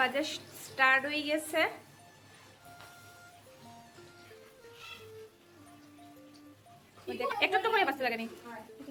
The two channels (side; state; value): both; identical; correlation 1.00